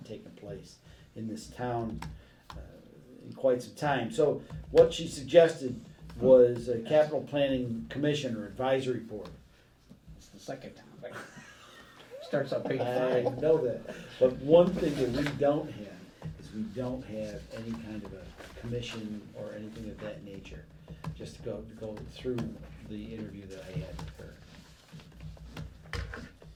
taken place in this town in quite some time. So what she suggested was a capital planning commission or advisory board. It's the second time. Starts on page I 5. know that, but one thing that we don't have is we don't have any kind of a commission or anything of that nature. Just to go through the interview that I had with her.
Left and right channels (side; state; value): both; identical; correlation 1.00